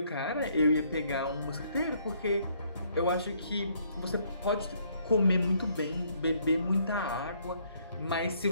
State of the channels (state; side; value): inverted; both; correlation -0.67